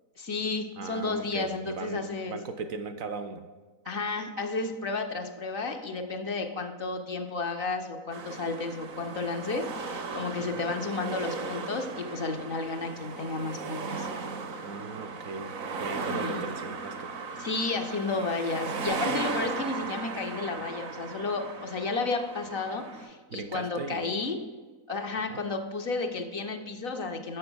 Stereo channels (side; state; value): left; late; 4.0 ms